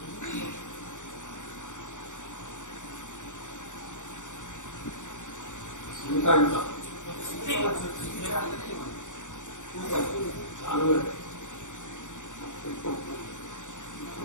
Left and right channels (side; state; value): right; late; 0.86 ms